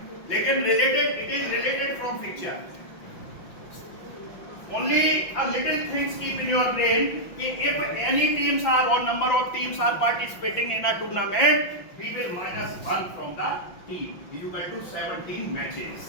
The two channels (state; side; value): late; right; 5.9 ms